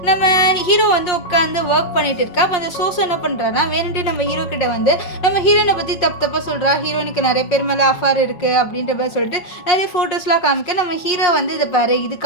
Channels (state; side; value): late; right; 5.6 ms